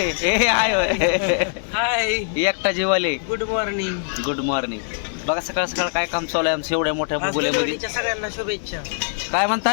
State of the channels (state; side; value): silent; right; digital silence